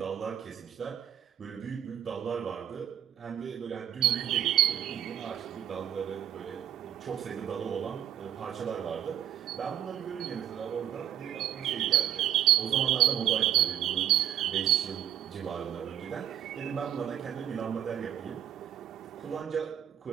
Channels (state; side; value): quieter; left; 10.3 dB